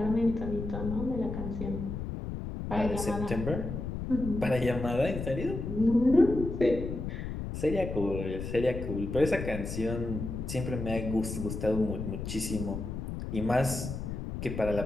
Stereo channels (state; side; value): noise; left; rumble, 5 dB below the sound